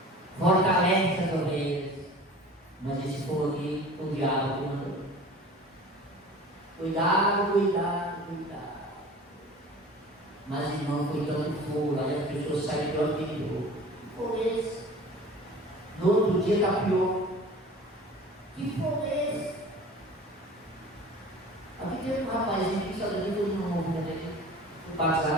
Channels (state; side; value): normal; both; correlation 0.41